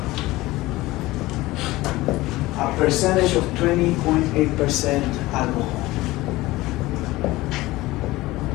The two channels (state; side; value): quieter; right; 18.9 dB